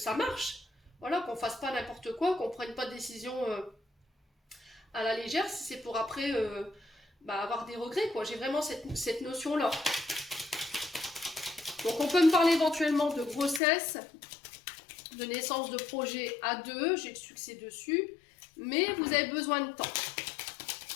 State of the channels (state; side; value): drops out; right; at 13.6 s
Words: marche. Voilà, qu'on fasse pas n'importe quoi, qu'on prenne pas de décision à la légère, si c'est pour après avoir des regrets, quoi. J'ai vraiment cette notion-là. Donc on peut me parler éventuellement de grossesse, de naissance de projet à deux, j'ai le succès dessus, mais vous avez besoin de temps.